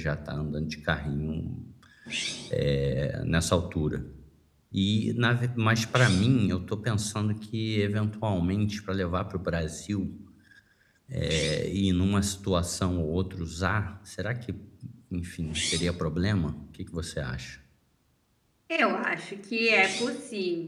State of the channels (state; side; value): identical; both; correlation 1.00